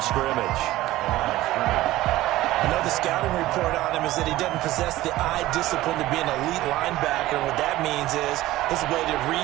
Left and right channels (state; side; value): quieter; left; 16.4 dB